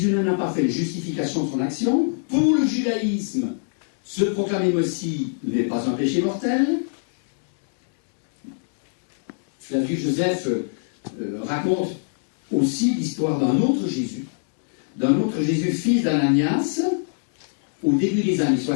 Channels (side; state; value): right; silent; digital silence